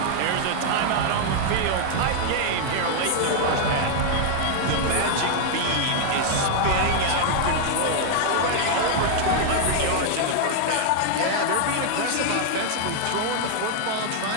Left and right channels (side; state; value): both; different; correlation 0.00